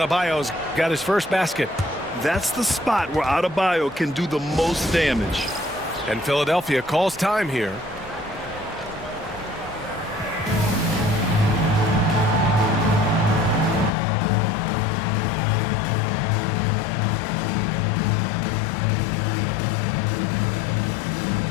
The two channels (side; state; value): right; drops out; at 13.9 s